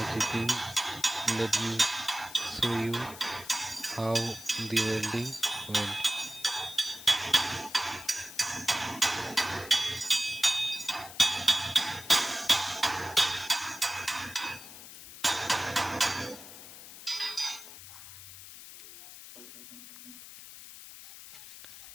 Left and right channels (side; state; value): left; noise; hiss, 15 dB below the sound